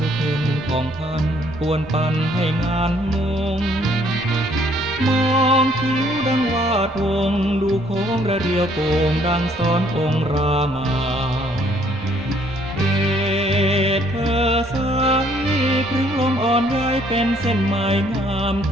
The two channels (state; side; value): normal; both; correlation 0.64